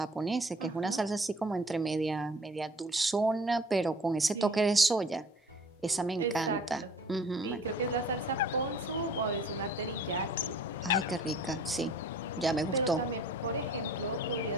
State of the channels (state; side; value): normal; both; correlation 0.49